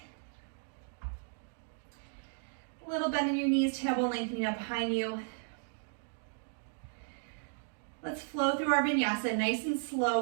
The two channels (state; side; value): silent; left; digital silence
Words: A little bend in your knees, tailbone lengthening up behind you. Let's flow through our vinyasa nice and